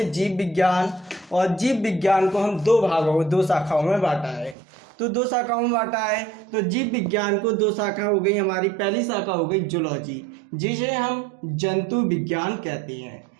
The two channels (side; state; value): left; drops out; at 4.5 s